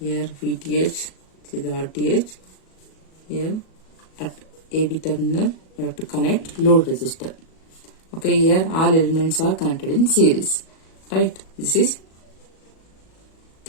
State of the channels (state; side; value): late; right; 37 ms